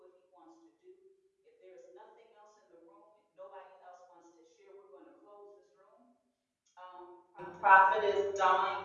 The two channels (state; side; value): identical; both; correlation 1.00